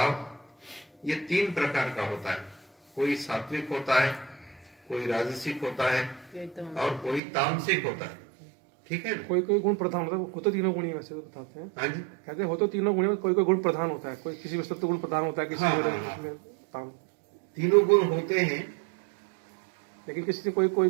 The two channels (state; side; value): drops out; left; at 7.2 s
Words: ये 3 प्रकार का होता है। कोई सात्विक होता है, कोई राजसिक होता है और कोई तामसिक होता है, ठीक है? कोई कोई गुण प्रधान होता है, वो तो तीनों गुण ही वैसे तो बताते हैं। हाँ जी, कहते हैं हो तो तीनों गुण, कोई कोई गुण प्रधान होता है, कोई किसी वस्तु गुण प्रधान होता है, किसी में तीनों गुण होते हैं, लेकिन किसी से कोई